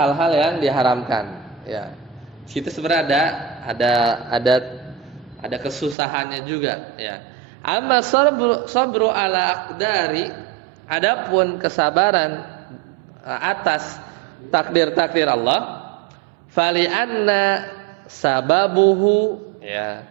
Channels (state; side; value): drops out; left; at 6.0 s